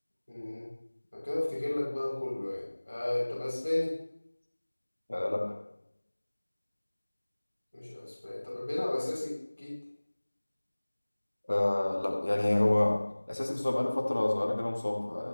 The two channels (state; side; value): inverted; both; correlation -1.00